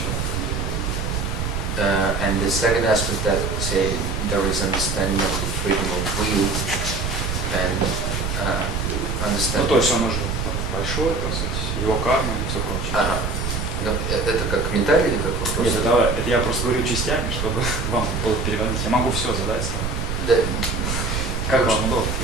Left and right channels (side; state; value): right; noise; rumble, 2 dB below the sound